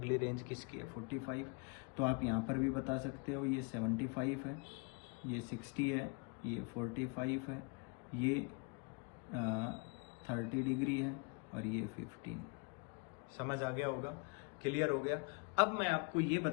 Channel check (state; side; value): quieter; right; 32.8 dB